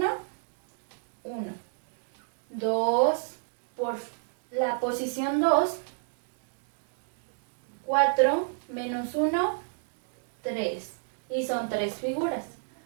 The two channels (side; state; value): left; silent; digital silence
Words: 1. 2 por la posición 2, 4 menos 1, 3. Y son 3 figuras.